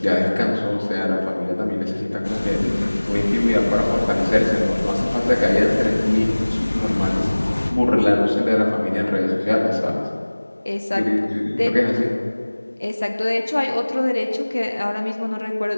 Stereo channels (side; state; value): both; inverted; correlation -1.00